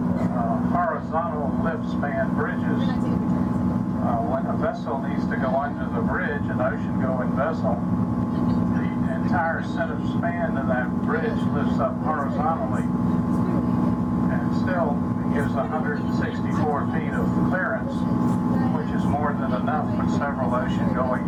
horizontal lift span bridges. When a vessel needs to go under the bridge, an ocean-going vessel, the entire center span of that bridge lifts up horizontally, and still gives 164 feet of clearance, which is more than enough for several ocean-going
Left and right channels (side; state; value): both; identical; correlation 1.00